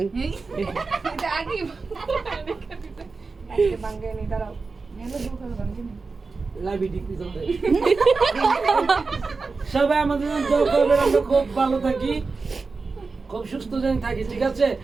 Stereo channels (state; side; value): quieter; left; 4.2 dB